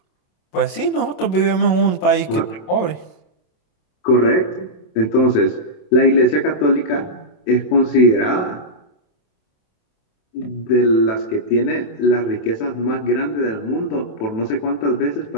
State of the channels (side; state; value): right; late; 27 ms